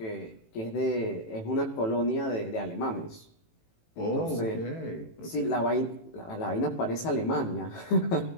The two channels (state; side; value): late; right; 18 ms